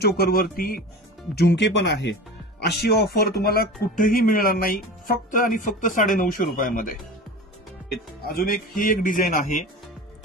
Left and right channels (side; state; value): both; normal; correlation 0.33